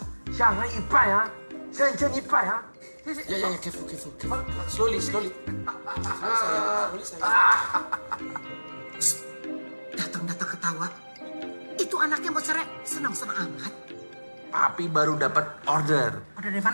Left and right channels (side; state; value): both; inverted; correlation -1.00